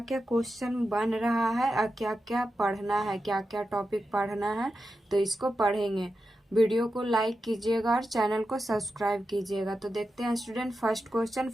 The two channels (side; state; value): both; normal; correlation 0.90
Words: क्या क्वेश्चन बन रहा है और क्या क्या पढ़ना है, क्या क्या टॉपिक पढ़ना है, तो इसको पढ़ेंगे। वीडियो को लाइक कीजिएगा और चैनल को सब्सक्राइब कीजिएगा। तो देखते हैं स्टूडेंट फर्स्ट